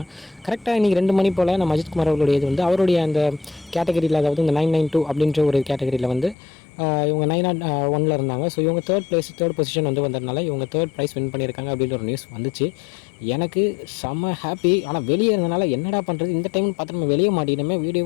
கரெக்டாக இன்றைக்கி 2 மணி போல் நம்ம அஜித்குமார் அவர்களுடைய இது வந்து அவருடைய அந்த கேட்டகரியில், அதாவது இந்த 992 அப்படின்ற ஒரு கேட்டகரியில் வந்து இவங்க 901 இருந்தாங்க. ஸோ இவங்க தேர்ட் பொசிஷன் வந்து வந்ததுனால இவங்க தேர்ட் ப்ரைஸ் வின் பண்ணியிருக்காங்க அப்படின்ற ஒரு நியூஸ் வந்துச்சு. எனக்கு செம்ம ஹாப்பி. ஆனால் வெளியே இருந்தனால என்னடா பண்ணுறது, இந்த டைம்னு பார்த்து நம்ம வெளியே மாட்டினமே,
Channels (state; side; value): drops out; right; at 6.4 s